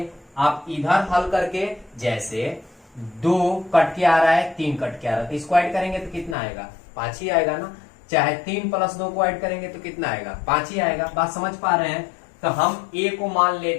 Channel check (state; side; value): drops out; right; at 6.4 s